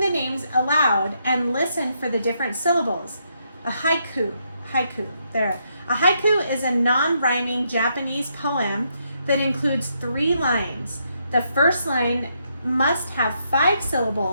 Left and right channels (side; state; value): both; inverted; correlation -0.77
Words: names aloud and listen for the different syllables. A haiku, there. A haiku is a non-rhyming Japanese poem that includes 3 lines. The first line must have 5